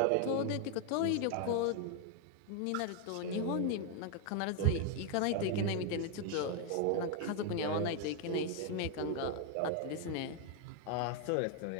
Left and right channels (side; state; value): both; different; correlation 0.01